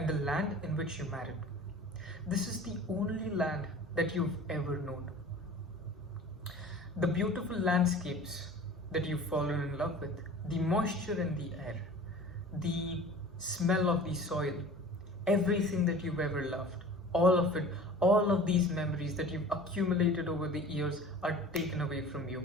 the land in which you married. This is the only land that you've ever known. The beautiful landscapes that you've fallen in love with, the moisture in the air, the smell of the soil, everything that you've ever loved, all of it, all of these memories that you've accumulated over the years are taken away from you.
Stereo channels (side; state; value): both; normal; correlation 0.42